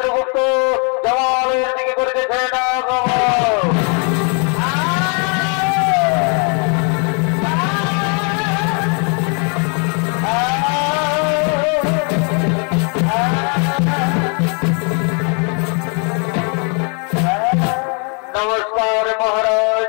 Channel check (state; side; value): quieter; right; 38.2 dB